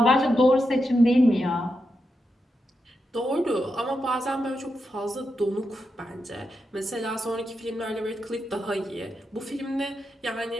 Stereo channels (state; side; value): normal; both; correlation 0.86